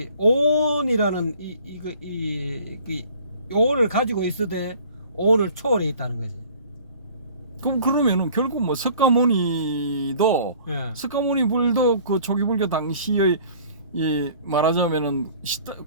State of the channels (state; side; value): inverted; both; correlation -0.51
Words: 오온이라는 이 오온을 가지고 있으되 오온을 초월해 있다는 거지. 그러면은 결국 뭐 석가모니도 예. 석가모니 불도 그 초기 불교 당시의 이 말하자면은